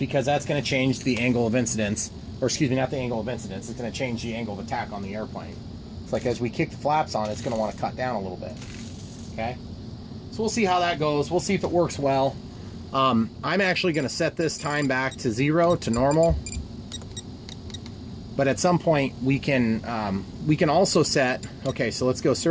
that's going to change the angle of incidence, or excuse me, not the angle of incidence, it's going to change the angle of attack on the airplane. It's like as we kick the flaps on, it's going to want to cut down a little bit. Okay, so we'll see how that goes. We'll see if it works well. I'm actually going to set this time back to 0, to normal. But at some point we can also set, okay, so let's go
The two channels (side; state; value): both; identical; correlation 1.00